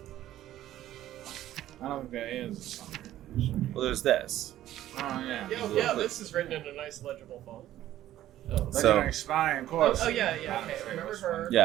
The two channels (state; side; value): quieter; left; 13.3 dB